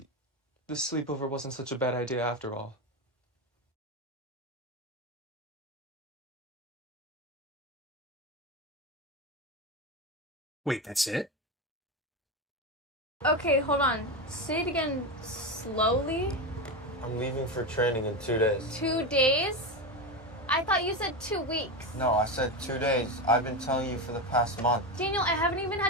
this sleepover wasn't such a bad idea after all. Wait, that's it? Okay, hold on. Say it again slowly. I'm leaving for training in 2 days. 2 days? I thought you said 2 weeks. No, I said 2 days. I've been telling you for the past month. Daniel, I haven't even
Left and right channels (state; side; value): normal; both; correlation 0.16